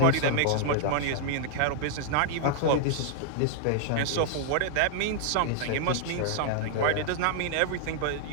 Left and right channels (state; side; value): different; both; correlation 0.00